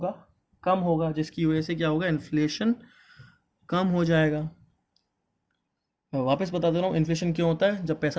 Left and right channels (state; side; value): identical; both; correlation 1.00